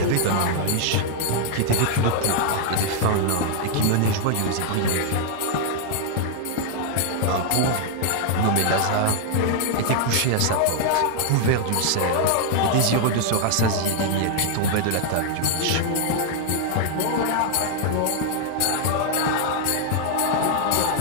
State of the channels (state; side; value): different; both; correlation 0.00